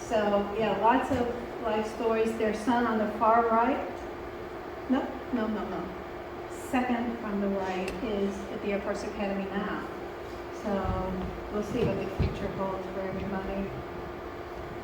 So yeah, lots of life stories. Their son on the far right, no. Second from the right is at the Air Force Academy now. So we'll see what the future holds for everybody.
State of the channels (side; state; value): both; identical; correlation 1.00